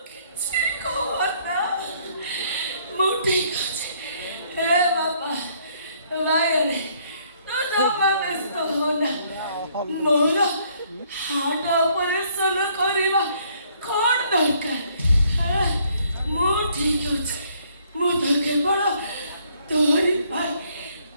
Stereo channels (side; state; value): both; inverted; correlation -0.65